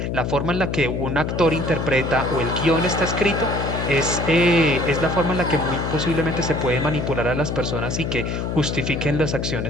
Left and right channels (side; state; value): left; noise; hum, 2 dB below the sound